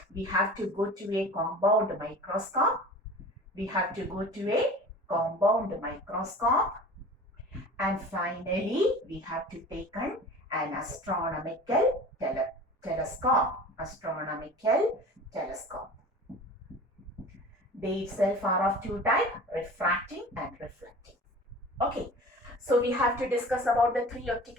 we have to go to a compound microscope. And finally, we have to take an astronomical telescope. They itself are of two types, refracting and reflecting. Okay, so we have to discuss about the three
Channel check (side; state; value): both; normal; correlation 0.40